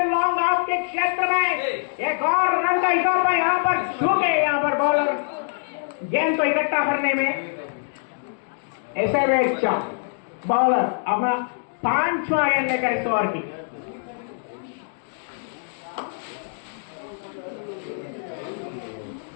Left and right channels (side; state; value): right; silent; digital silence